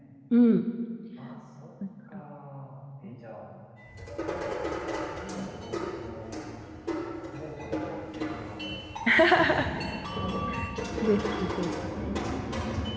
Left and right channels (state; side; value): identical; both; correlation 1.00